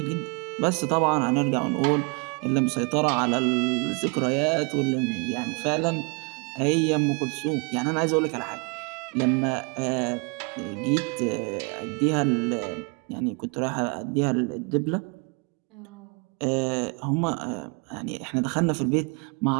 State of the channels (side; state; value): left; quieter; 34.0 dB